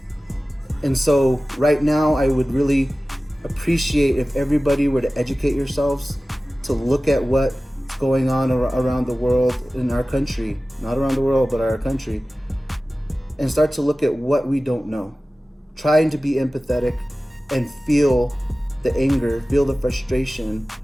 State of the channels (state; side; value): normal; both; correlation 0.97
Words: And so right now, I would really appreciate if everybody were to educate yourselves, to look at what's going on around the world in our country, not around the world, but our country, and start to look at what we don't know. Trying to be empathetic and feel the anger, feel the frustration